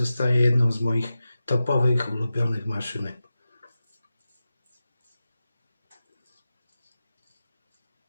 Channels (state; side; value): inverted; both; correlation -0.93